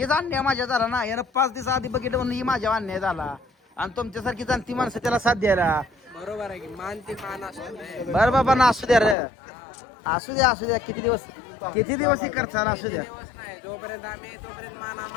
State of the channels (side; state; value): right; drops out; at 9.2 s